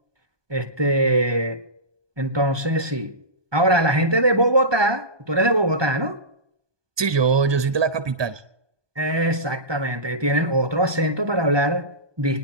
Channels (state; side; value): late; left; 1.2 ms